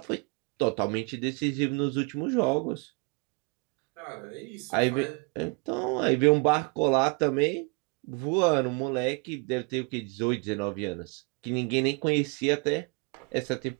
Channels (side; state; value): left; quieter; 30.5 dB